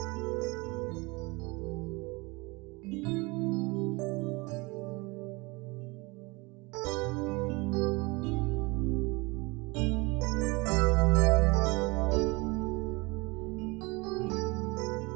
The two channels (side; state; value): left; quieter; 25.5 dB